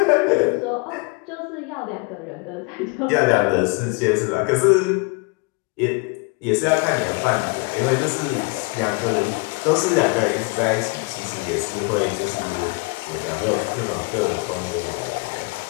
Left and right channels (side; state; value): right; quieter; 29.7 dB